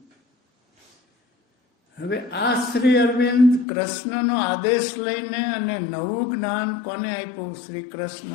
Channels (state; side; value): drops out; right; at 3.7 s